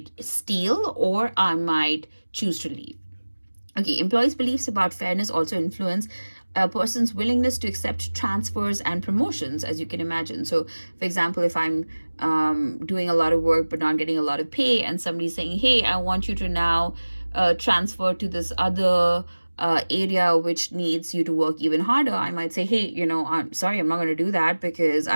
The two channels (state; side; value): inverted; both; correlation -1.00